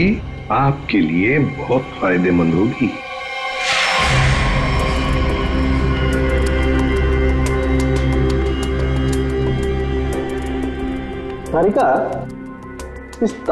आपके लिए बहुत फायदेमंद होगी। तारिका, इस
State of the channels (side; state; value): both; identical; correlation 1.00